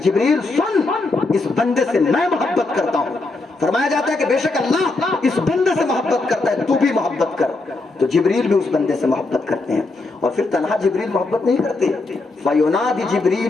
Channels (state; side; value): quieter; right; 3.3 dB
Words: جبریل سن، اس بندے سے میں محبت کرتا ہوں۔ فرمایا جاتا ہے کہ بے شک اللہ اس بندے سے محبت کرتا ہے، تو بھی محبت کر، تو جبریل بھی اس بندے سے محبت کرتے ہیں۔ اور پھر تنہا جبریل محبت نہیں کرتے، فَيُنَادِ